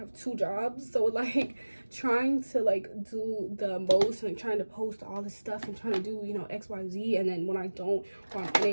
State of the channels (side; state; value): both; inverted; correlation -1.00